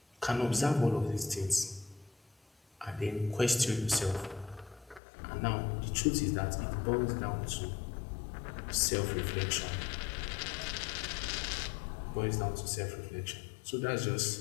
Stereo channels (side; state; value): right; drops out; at 5.0 s